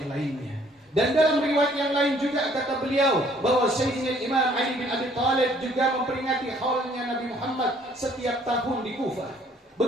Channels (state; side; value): normal; both; correlation 0.61